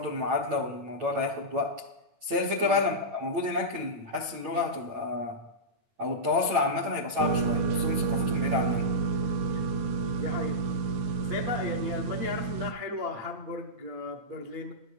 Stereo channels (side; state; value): left; late; 9.0 ms